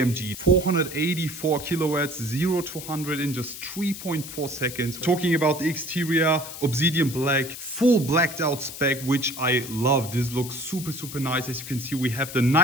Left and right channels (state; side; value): noise; left; hiss, 11 dB below the sound